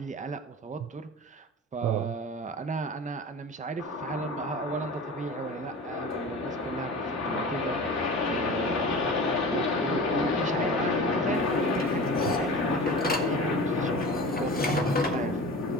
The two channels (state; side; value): normal; both; correlation 0.35